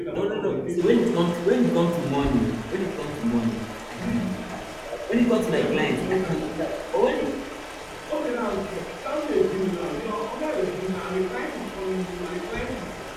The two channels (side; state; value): both; identical; correlation 1.00